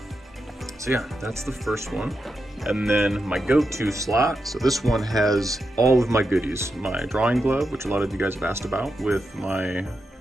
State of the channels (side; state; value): both; normal; correlation 0.87